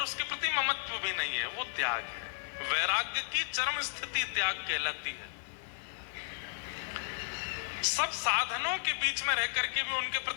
उसके प्रति ममत्व भी नहीं है, वो त्याग है। वैराग्य की चरम स्थिति त्याग कहलाती है। सब साधनों के बीच में रह करके भी उनके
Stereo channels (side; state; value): right; silent; digital silence